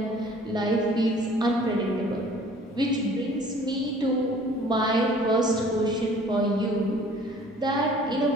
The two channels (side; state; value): both; normal; correlation 0.52